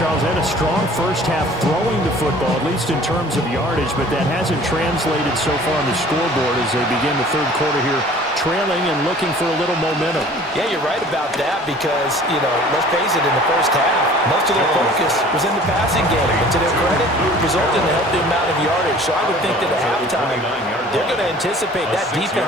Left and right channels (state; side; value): normal; both; correlation 0.49